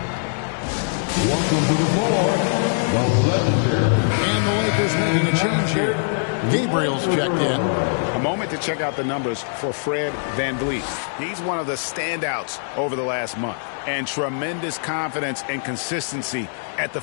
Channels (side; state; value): right; silent; digital silence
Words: Welcome to the floor, the legendary. And the Lakers making a change here. Gabriel's checked in. A moment to check out the numbers for Fred VanVleet. He's one of the standouts over the last month. And tremendous confidence and consistency at the